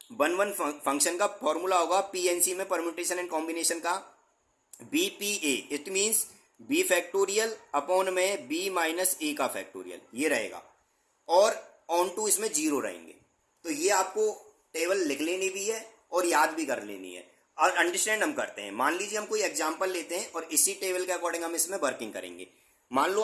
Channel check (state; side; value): identical; both; correlation 1.00